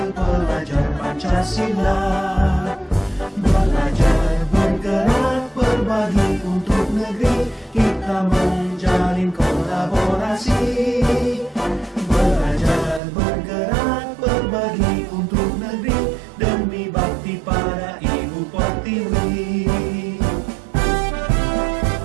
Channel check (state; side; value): drops out; left; at 13.0 s